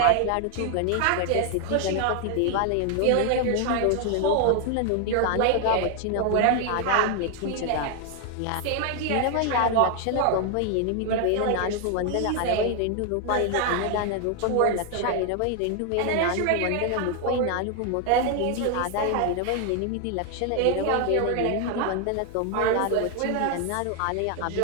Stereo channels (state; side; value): different; both; correlation 0.00